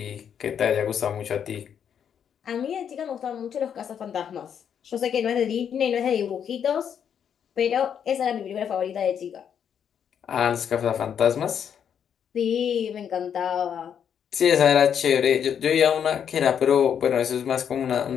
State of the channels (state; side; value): quieter; right; 8.2 dB